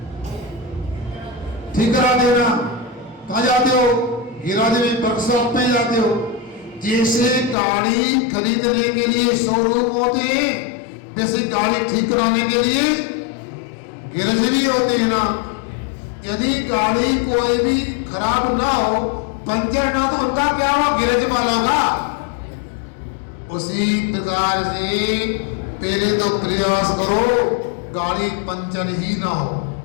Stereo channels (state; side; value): drops out; right; at 7.6 s